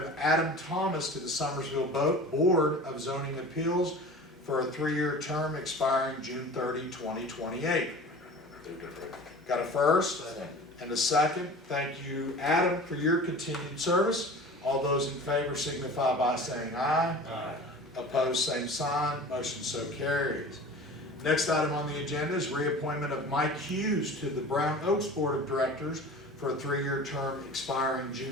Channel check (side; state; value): both; normal; correlation 0.39